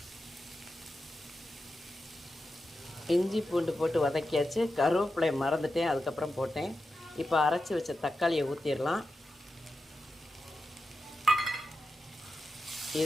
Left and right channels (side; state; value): both; normal; correlation 0.90